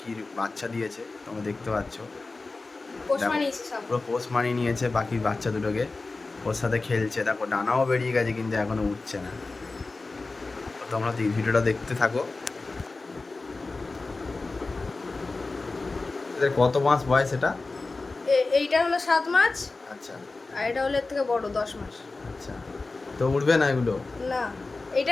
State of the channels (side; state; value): right; quieter; 3.6 dB